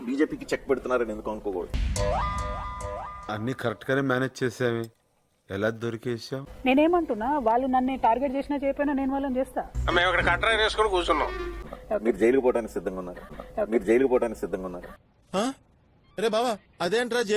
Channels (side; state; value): both; identical; correlation 1.00